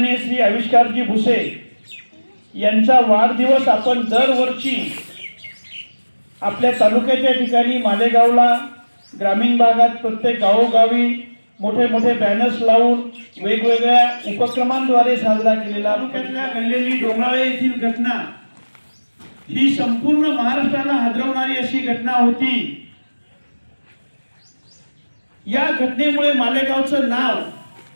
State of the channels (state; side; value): inverted; both; correlation -1.00